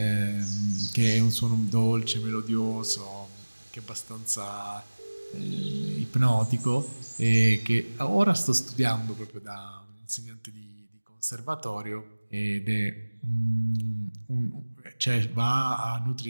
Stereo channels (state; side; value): inverted; both; correlation -1.00